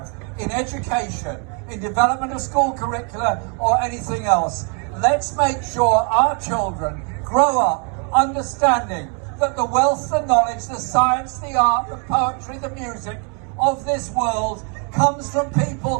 in education, in development of school curricula or anything else, let's make sure our children grow up understanding that the wealth, the knowledge, the science, the art, the poetry, the music of this world comes from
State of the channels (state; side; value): quieter; left; 38.6 dB